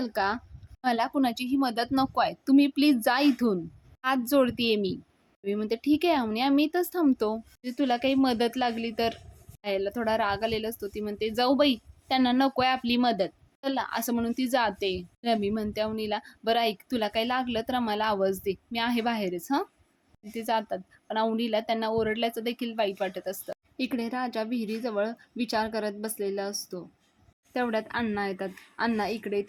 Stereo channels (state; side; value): identical; both; correlation 1.00